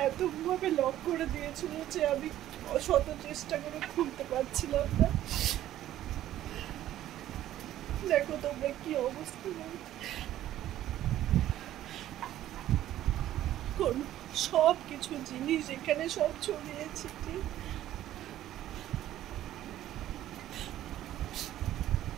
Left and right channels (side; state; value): left; quieter; 13.0 dB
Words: এতভাবে লক করে দিয়েছিল যে আমি শত চেষ্টা করে খুলতে পারছিলাম না। দেখো তোমরা কি অবস্থা, সব কিছু জিনিস এখানে সব ছড়িয়েছি।